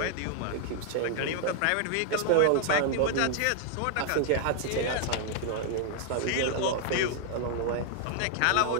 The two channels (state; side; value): different; both; correlation 0.00